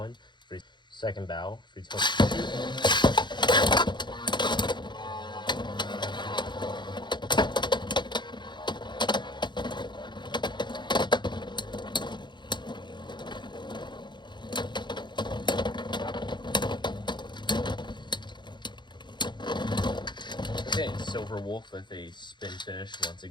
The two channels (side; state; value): right; late; 0.22 ms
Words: Second battle, 3, 2, 1, shoot. Okay, Silver Wolf with a spin finish once